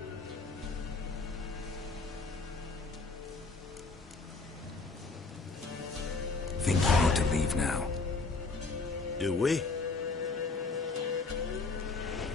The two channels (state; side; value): quieter; right; 4.1 dB